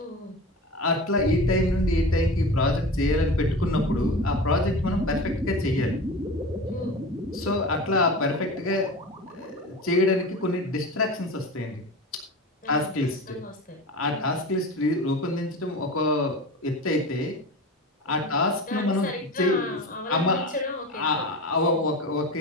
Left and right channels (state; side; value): normal; both; correlation 0.30